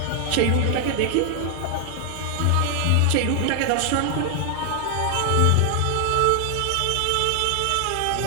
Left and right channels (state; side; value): different; both; correlation 0.00